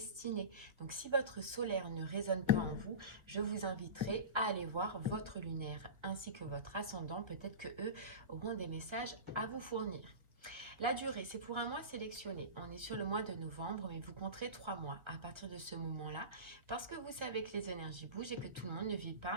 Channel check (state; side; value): late; left; 1.5 ms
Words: Donc si votre solaire ne résonne pas en vous, je vous inviterai à aller voir votre lunaire ainsi que votre ascendant. Peut-être que eux auront des messages à vous fournir. La durée, c'est pour un mois sélectionné. On est sur le mois de novembre, mais vous compterez 3 mois à partir de ce moment-là, parce que vous savez que les énergies bougent et que tout le monde ne vit